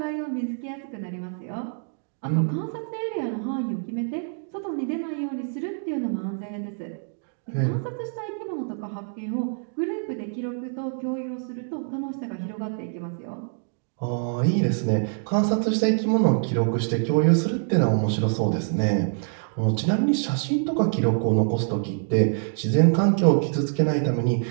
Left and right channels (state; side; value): silent; left; digital silence